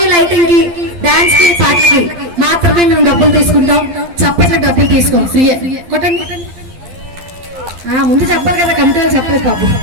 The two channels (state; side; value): late; left; 12 ms